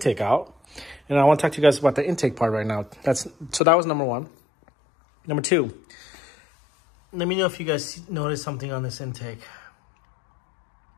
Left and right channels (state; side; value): drops out; right; at 3.6 s